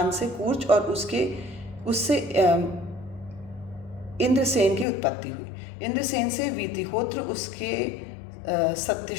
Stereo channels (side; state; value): right; drops out; at 4.9 s